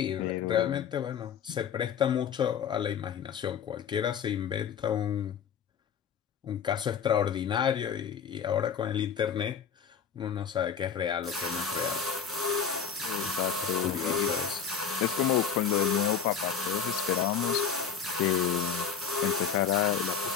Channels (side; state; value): right; quieter; 7.1 dB